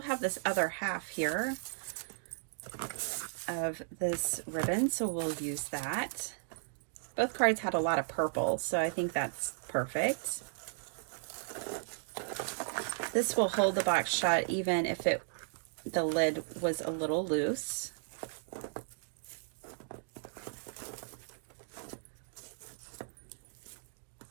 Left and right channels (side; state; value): left; silent; digital silence